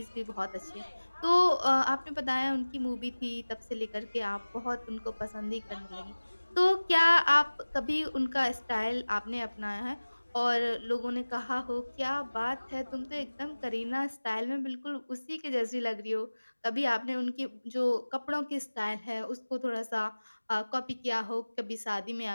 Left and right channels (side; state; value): both; inverted; correlation -1.00